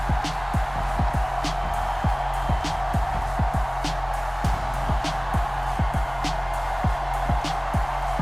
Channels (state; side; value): identical; both; correlation 1.00